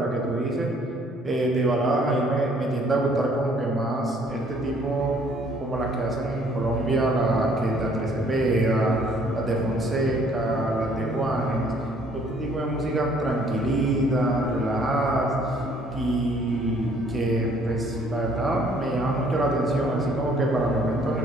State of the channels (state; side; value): normal; both; correlation 0.61